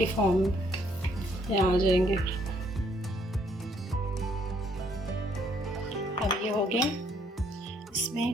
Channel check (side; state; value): both; normal; correlation 0.67